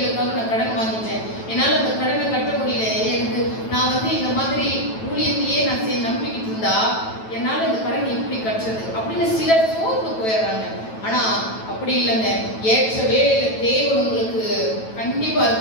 நான் கடன் வாங்கிட்டேன், என்னால் அந்த கடனை கட்ட முடியல, எனக்கு நான் இந்த மாதிரி ஊழியத்தையே நான் நம்பிக்கிட்டு இருந்தா என்னால் இந்த கடன் எப்படி கட்டுறது அப்படின்னு சிலர் சோர்ந்து போயிடுறாங்க. ஆனா அப்படி இல்லைங்க. ஏற்ற வேலையில தேவன் உங்களுக்கு கண்டிப்பா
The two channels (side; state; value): right; late; 9.1 ms